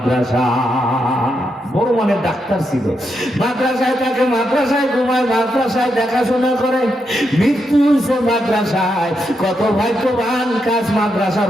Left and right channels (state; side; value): normal; both; correlation 0.82